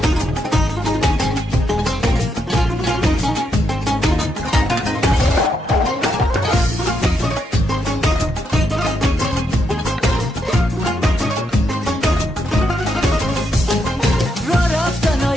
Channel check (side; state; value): both; normal; correlation 0.80